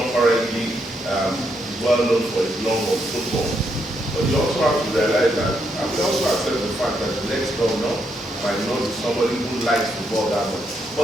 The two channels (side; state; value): both; normal; correlation 0.78